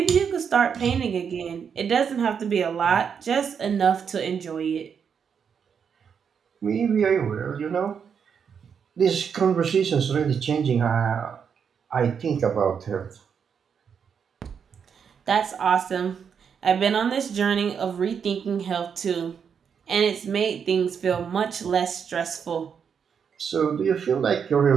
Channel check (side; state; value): left; quieter; 7.0 dB